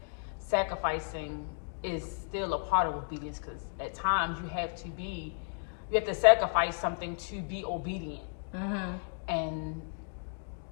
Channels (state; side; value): silent; right; 56 dB below the other